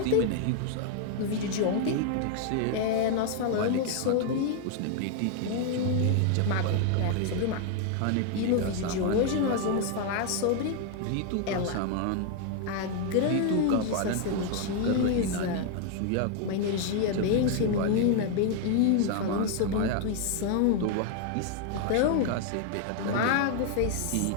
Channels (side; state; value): both; different; correlation 0.00